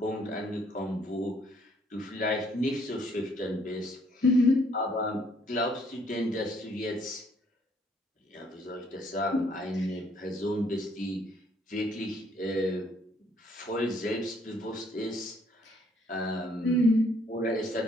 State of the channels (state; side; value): normal; both; correlation 0.65